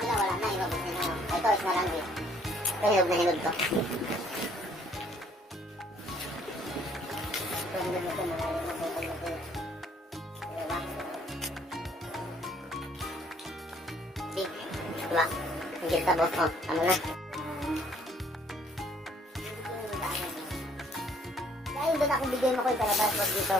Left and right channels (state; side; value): normal; both; correlation 0.62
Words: na wala na, ilabot na yun. Ito, is na lang din. Ito, hinog na hinog to. Ito, hinog na ito, mga hinog na ito. Diba? Big. Diba? Ang gilta boss ko. Ano na? Dahil doon ako bigay mo ko yung kalabas. Wag